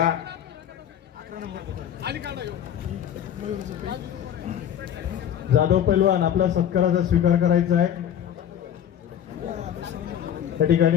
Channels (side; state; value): right; quieter; 9.9 dB